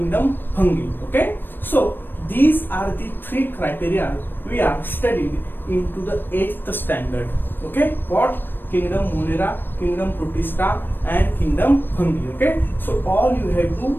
Fungi. Okay, so these are the 3 criteria we are studied into the 8th standard. Okay, what? Kingdom Monera, kingdom Protista, and kingdom Fungi. Okay, so all you have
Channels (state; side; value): late; right; 0.095 ms